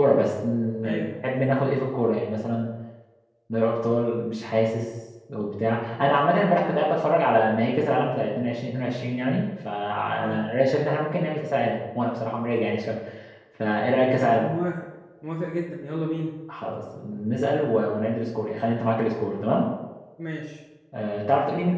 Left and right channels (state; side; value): identical; both; correlation 1.00